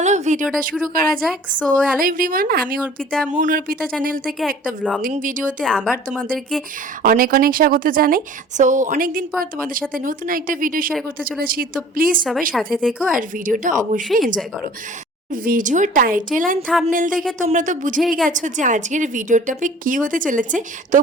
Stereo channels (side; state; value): both; normal; correlation 0.48